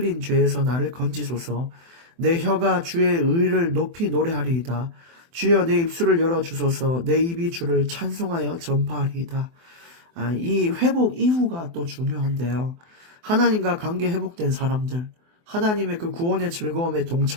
죄에서 나를 건지소서. 내 혀가 주의 의를 높이 노래하리이다. 주여 내 입술을 열어주소서. 내 입이 주를 찬송하여 전파하리이다. 이 회복 이후가 또 중요한데요. 하나님과 관계 회복된 사람들, 하나님의 그 구원의 즐거움에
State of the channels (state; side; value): late; left; 24 ms